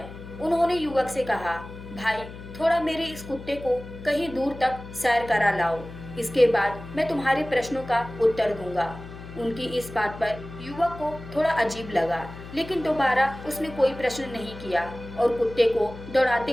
उन्होंने युवक से कहा, भाई, थोड़ा मेरे इस कुत्ते को कहीं दूर तक सैर करा लाओ। इसके बाद मैं तुम्हारे प्रश्नों का उत्तर दूंगा। उनकी इस बात पर युवक को थोड़ा अजीब लगा, लेकिन दोबारा उसने कोई प्रश्न नहीं किया और कुत्ते को दौड़ाते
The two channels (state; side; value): noise; left; hum, 14 dB below the sound